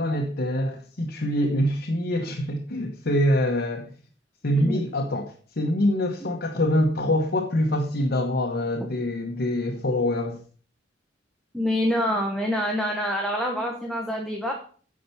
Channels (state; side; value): normal; both; correlation 0.59